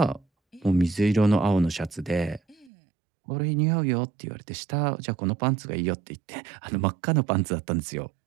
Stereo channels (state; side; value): drops out; left; at 2.7 s